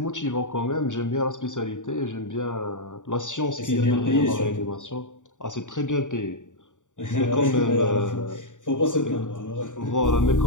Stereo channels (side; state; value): right; late; 0.86 ms